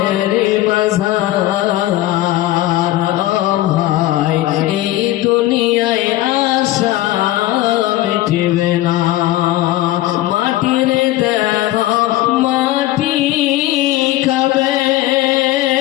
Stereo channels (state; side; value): quieter; right; 15.9 dB